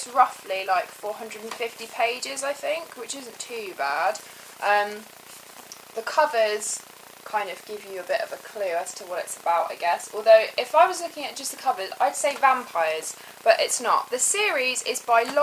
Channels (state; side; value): identical; both; correlation 1.00